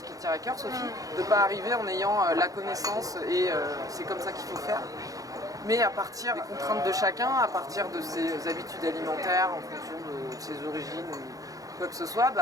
qui te tient à cœur, Sophie, de ne pas arriver en ayant la connaissance et c'est comme ça qu'il faut faire. Mais à partir des contraintes de chacun, à partir de ses habitudes alimentaires, en fonction de ses origines, quoi que ce soit,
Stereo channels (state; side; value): late; left; 0.17 ms